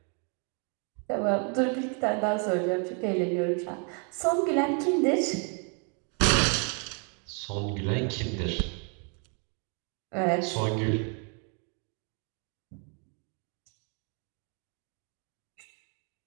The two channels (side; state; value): left; quieter; 39.0 dB